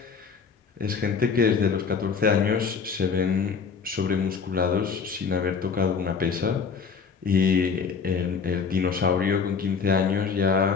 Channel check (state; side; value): quieter; right; 5.7 dB